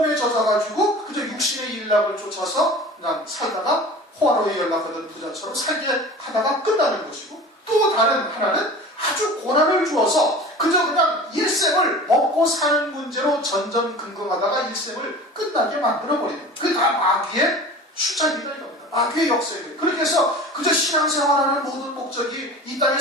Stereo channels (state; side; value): normal; both; correlation 0.39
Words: 젖어가지고 그저 육신의 일락을 쫓아서 그냥 살다가 호화로에 연락하던 부자처럼 살게 하다가 끝나는 것이고 또 다른 하나는 아주 고난을 주어서 그저 그냥 일생을 먹고 사는 문제로 전전긍긍하다가 일생을 끝나게 만들어버리는 거예요. 그게 다 마귀의 수작이다 이겁니다. 마귀의 역사예요. 그렇게 해서 그저 신앙생활하는 모든 목적이 이 땅에